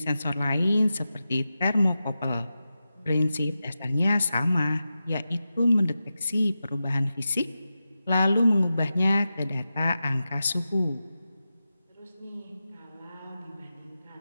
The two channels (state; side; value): inverted; both; correlation -0.92